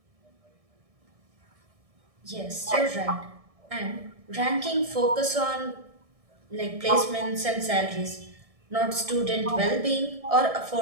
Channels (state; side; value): late; left; 1.6 ms